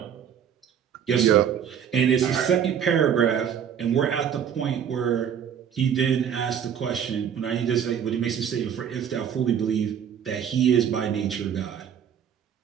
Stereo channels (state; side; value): quieter; left; 8.5 dB